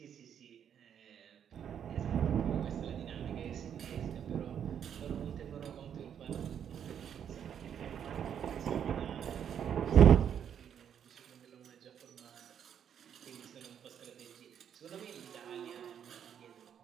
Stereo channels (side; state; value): left; quieter; 8.7 dB